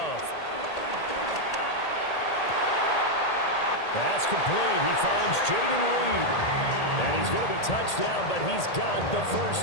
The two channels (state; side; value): late; right; 1.8 ms